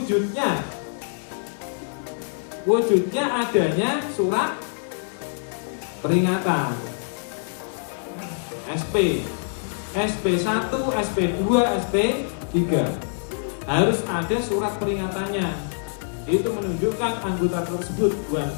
wujudnya adanya surat peringatan SP, SP1, SP2, SP3 harus ada surat peringatannya. Itu menunjukkan anggota tersebut buat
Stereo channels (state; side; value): silent; right; digital silence